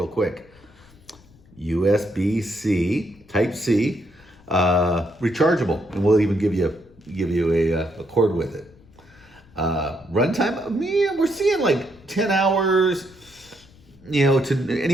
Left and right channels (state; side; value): noise; left; rumble, 27 dB below the sound